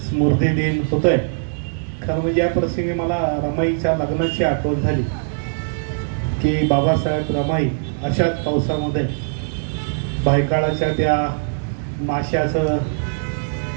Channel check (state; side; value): silent; left; digital silence